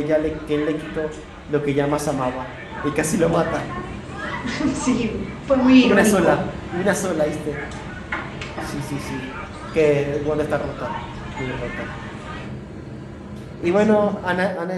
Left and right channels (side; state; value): both; identical; correlation 1.00